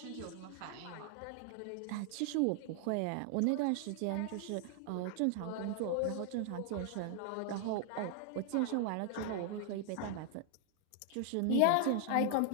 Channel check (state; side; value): different; both; correlation 0.00